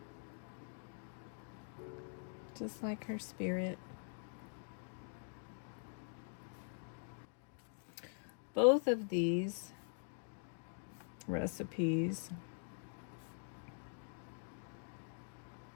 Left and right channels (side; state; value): right; silent; digital silence